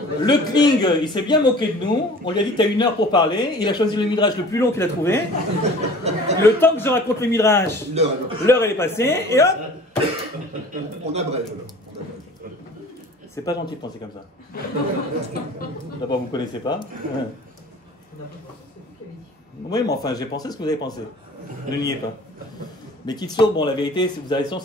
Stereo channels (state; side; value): normal; both; correlation 0.45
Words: Le Kling, il s'est bien moqué de nous. On lui a dit t'as 1 heure pour parler. Il a choisi le midrash le plus long qu'il a trouvé. Le temps que je raconte le midrash, l'heure elle est passée. Et hop, on abrège. c'est pas gentil de penser comme ça. D'abord, vous ne connaissez pas. Oui, mais enfin, j'ai pensé ce que vous avez pensé. Ne niez pas. Mais Kitsour, bon, la vérité, vous avez raison,